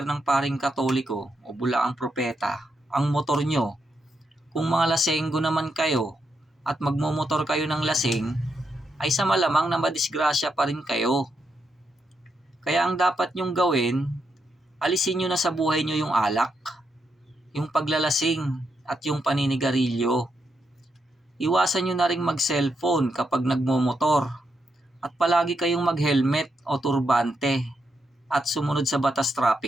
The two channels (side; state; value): both; normal; correlation 0.82